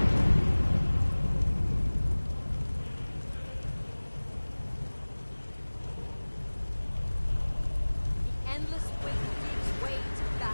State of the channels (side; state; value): both; inverted; correlation -1.00